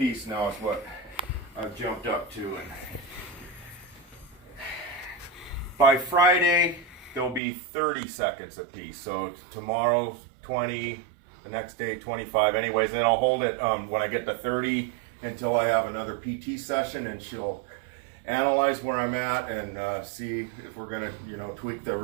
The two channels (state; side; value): drops out; left; at 7.4 s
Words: Now is what I've jumped up to, and by Friday there'll be 30 seconds apiece. So tomorrow 20, the next day 25. Anyways, then I'll hold it when I get to 30 until I have another PT session, and she'll analyze where I'm at and see if we're gonna, tweak the